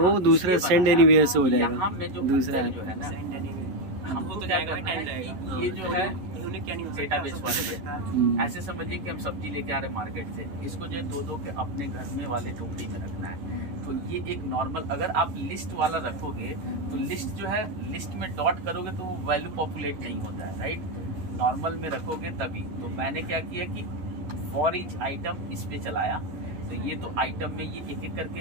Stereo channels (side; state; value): left; late; 11 ms